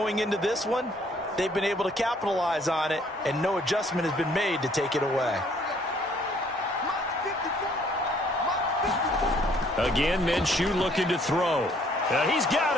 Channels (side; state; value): both; normal; correlation 0.62